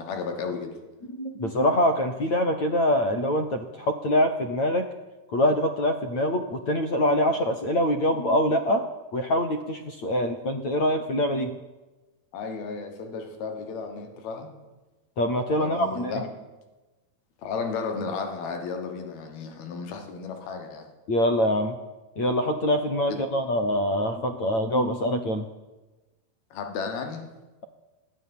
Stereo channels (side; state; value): right; late; 8.9 ms